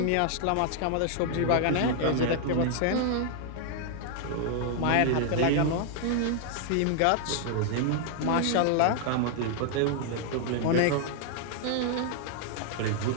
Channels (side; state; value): both; different; correlation 0.00